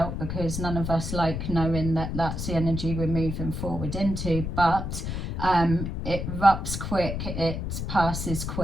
because none of us like knowing that that's the energy we're moving forward into, but it erupts quick, it passes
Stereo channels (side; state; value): left; noise; rumble, 4 dB below the sound